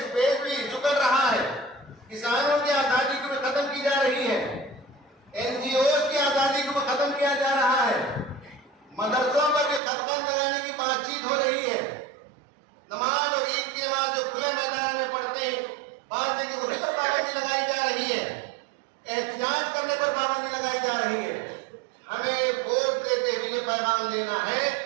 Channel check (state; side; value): drops out; left; at 9.8 s